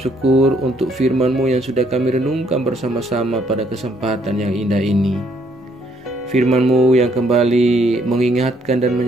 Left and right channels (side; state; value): both; normal; correlation 0.68